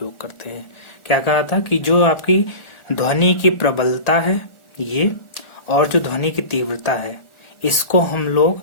करते हैं। क्या कहा था कि जो आपकी ध्वनि की प्रबलता है ये, और जो ध्वनि की तीव्रता है, इसको हम लोग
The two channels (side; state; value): right; late; 1.4 ms